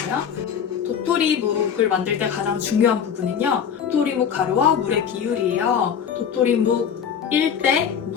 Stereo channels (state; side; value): quieter; right; 7.8 dB